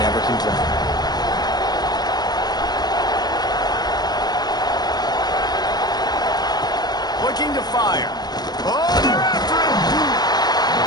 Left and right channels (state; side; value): late; right; 0.19 ms